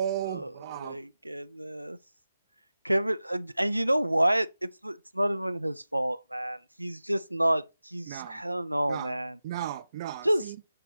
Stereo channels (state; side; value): inverted; both; correlation -0.94